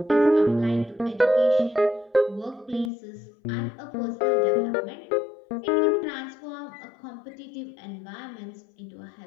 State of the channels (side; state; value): right; drops out; at 2.9 s